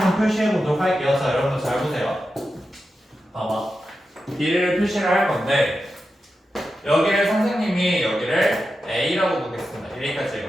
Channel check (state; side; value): normal; both; correlation 0.90